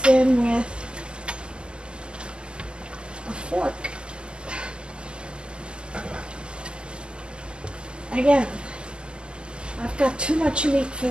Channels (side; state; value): left; late; 0.049 ms